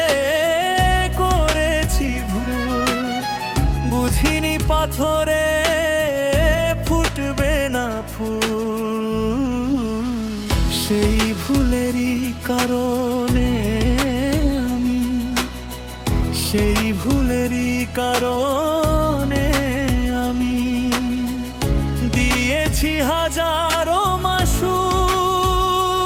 করেছি ভুল, বুঝিনি পাথরে ফুটবে না ফুল। সেই ভুলেরই কারণে আমি, সেই ভুলেরই কারণে আমি দিয়েছি হাজারো মাসু।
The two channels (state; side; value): identical; both; correlation 1.00